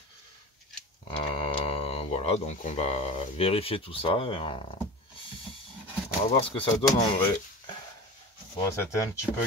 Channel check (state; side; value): normal; both; correlation 0.33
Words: Voilà, donc on va vérifier tout ça et on va voir ce que ça donne en vrai. Bon, c'était un petit peu